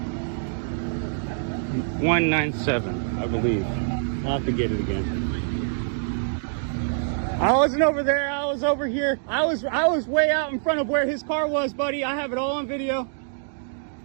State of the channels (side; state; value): left; silent; digital silence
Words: I believe. I'll have to get it again. I wasn't over there. I was over here. I was way out in front of where his car was, buddy. I have it all on video.